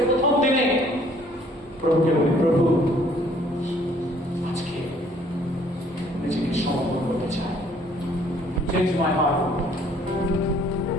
প্রথম দিনে প্রভুকে বলি, প্রভু আজকে নিজেকে সমর্পণ করতে চাই। Change my heart.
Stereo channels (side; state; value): both; normal; correlation 0.60